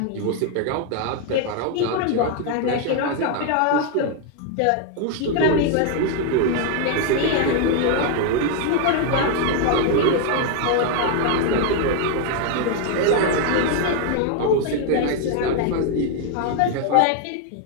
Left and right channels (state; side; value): different; both; correlation 0.00